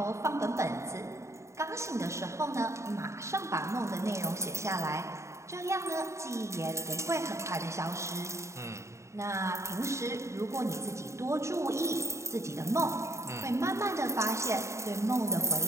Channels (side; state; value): left; late; 0.14 ms